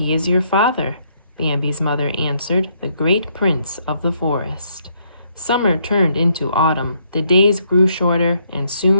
is your father, Bambi's mother answered, the great prince of the forest. Summer turned into autumn. The days grew shorter, and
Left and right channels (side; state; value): both; inverted; correlation -0.72